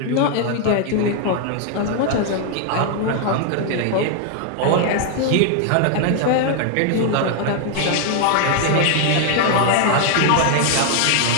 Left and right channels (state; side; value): different; both; correlation 0.00